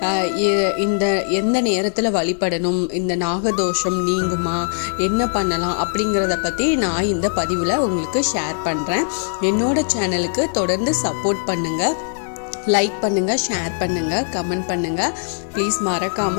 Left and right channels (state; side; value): silent; right; digital silence